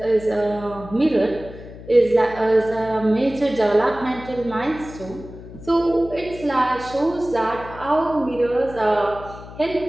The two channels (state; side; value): noise; left; hum, 15 dB below the sound